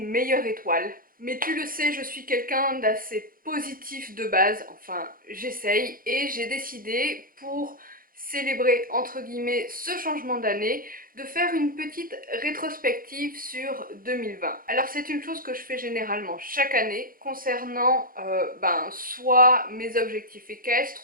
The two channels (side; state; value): left; late; 0.41 ms